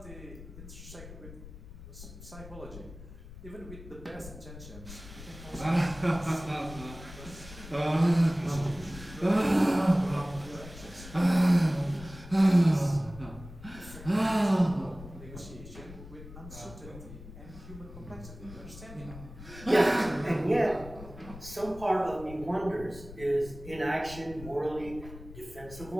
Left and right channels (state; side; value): noise; left; rumble, 15 dB below the sound